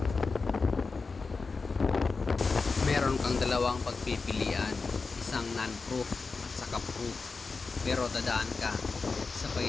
Meron kang dalawang pagpipilian, isang non-proof at saka proof, pero dadaan ka sa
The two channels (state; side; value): quieter; right; 4.4 dB